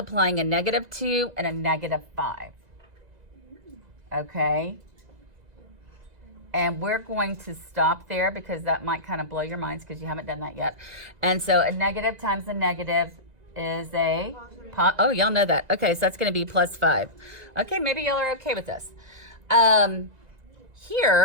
a negative 2 and a negative 5. Okay? And we're going to stop there because that might kind of blow your minds because you haven't done that yet. And so a negative times a negative is a, oh, y'all know that. Okay, so that's going to be plus 5. Okay, maybe y'all are okay with this.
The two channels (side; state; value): left; late; 2.0 ms